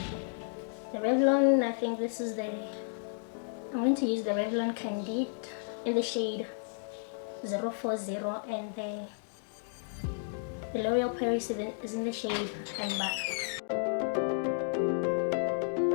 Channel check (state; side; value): silent; right; digital silence